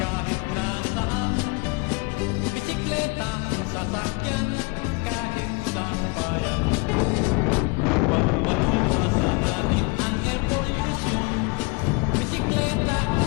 nasaan, bisikleta, sasakyan, kahit sa bayan. Upang maiwasan natin ang air pollution, bisikleta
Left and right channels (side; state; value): right; quieter; 29.6 dB